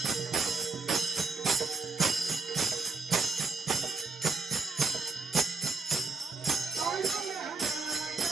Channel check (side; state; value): left; quieter; 4.3 dB